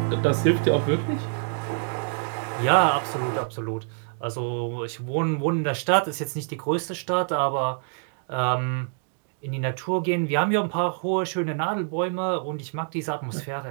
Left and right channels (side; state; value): left; silent; 61 dB below the other